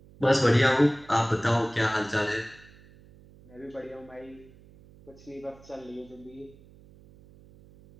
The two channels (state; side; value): noise; right; hum, 24 dB below the sound